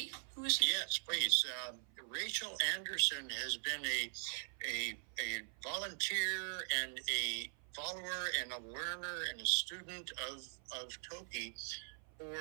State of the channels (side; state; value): left; silent; 50 dB below the other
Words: Yes, please. Rachael Andersen has been a volunteer and a follower and a learner and a student of Toki